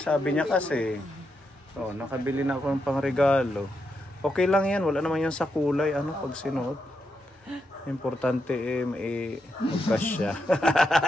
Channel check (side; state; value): both; normal; correlation 0.83